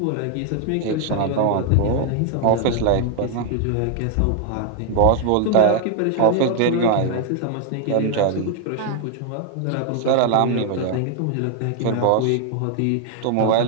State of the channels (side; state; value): both; different; correlation 0.00